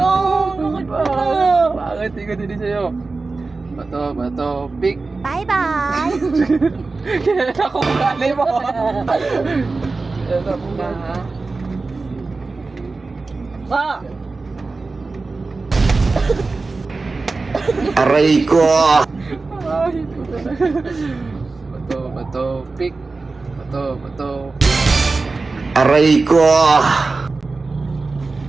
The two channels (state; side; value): quieter; left; 3.8 dB